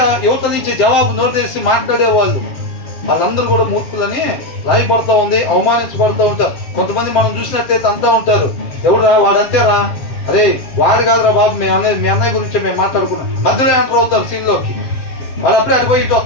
యువత నుంచి జవాబు నోరు తెరిచి మాట్లాడేవాళ్ళు, వాళ్ళందరూ కూడా మూర్ఖులని రాయబడుతూ ఉంది, అవమానించబడుతూ ఉంటారు. కొంతమంది మనం చూసినట్టయితే అంతా ఉంటారు, ఎవడురా వాడంతేరా, అరే వాడు కాదురా బాబు, మీ అన్నయ్య గురించి మేము మాట్లాడుకున్నాం, మధ్యలో ఎంటర్ అవుతారు సీన్లోకి. వాడు అప్పుడే అటు పోయి ఇటు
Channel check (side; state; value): right; late; 7.7 ms